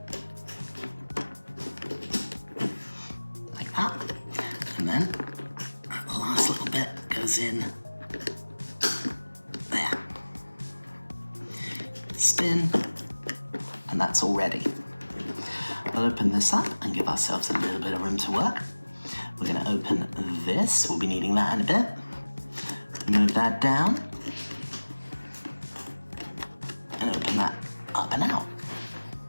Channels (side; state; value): both; inverted; correlation -1.00